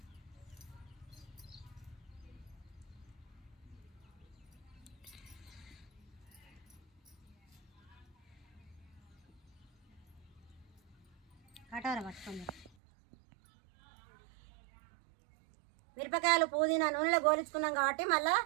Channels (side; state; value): left; drops out; at 12.7 s